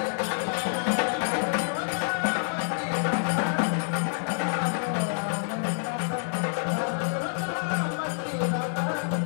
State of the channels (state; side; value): silent; right; 60 dB below the other